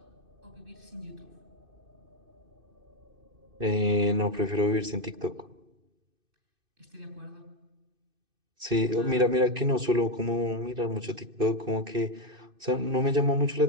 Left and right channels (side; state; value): left; late; 2.6 ms